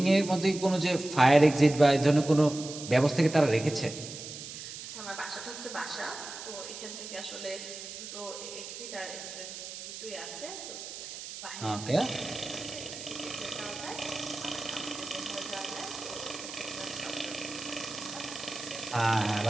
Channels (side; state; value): right; noise; hiss, 10 dB below the sound